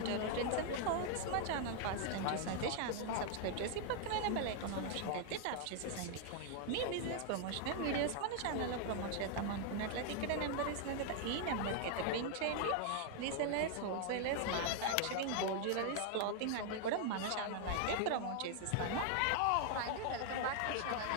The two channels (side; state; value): both; different; correlation 0.00